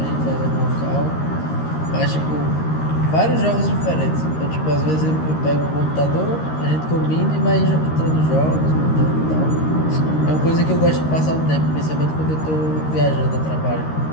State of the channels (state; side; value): late; right; 13 ms